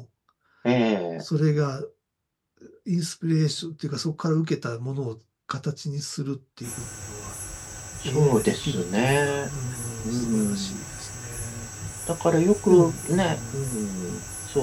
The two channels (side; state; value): both; identical; correlation 1.00